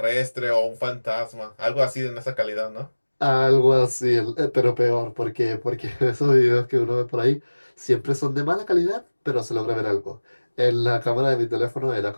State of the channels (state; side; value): inverted; both; correlation -1.00